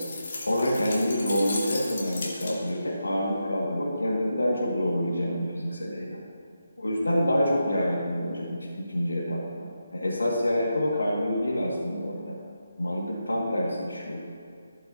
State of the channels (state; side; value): inverted; both; correlation -0.87